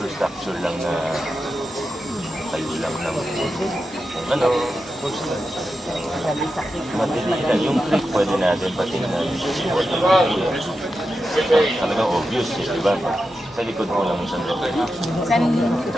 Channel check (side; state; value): both; normal; correlation 0.89